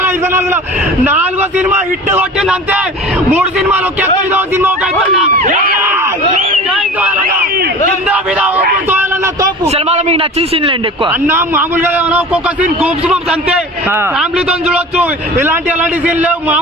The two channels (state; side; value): normal; both; correlation 0.38